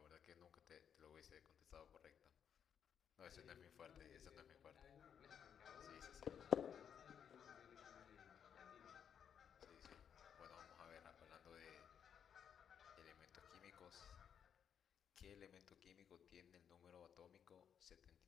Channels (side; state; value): right; quieter; 8.1 dB